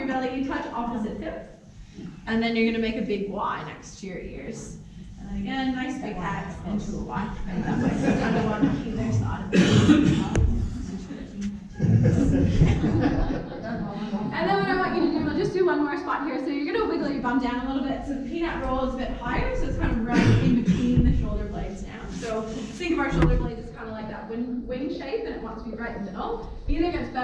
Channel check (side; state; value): both; identical; correlation 1.00